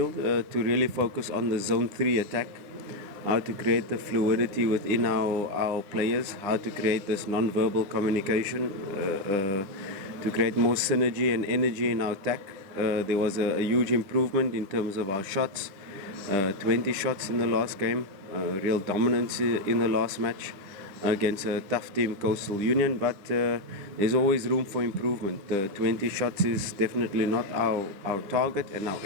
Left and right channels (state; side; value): late; left; 10 ms